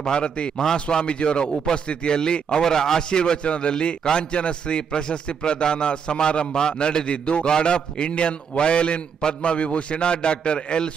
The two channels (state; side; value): quieter; left; 6.8 dB